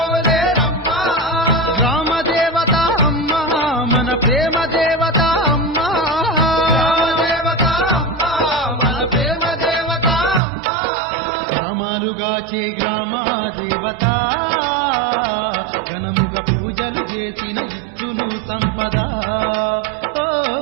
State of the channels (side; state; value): left; drops out; at 10.4 s